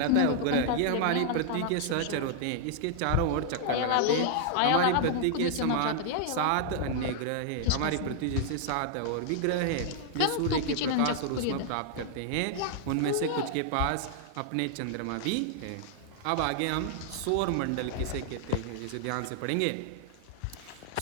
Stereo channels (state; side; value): different; both; correlation -0.01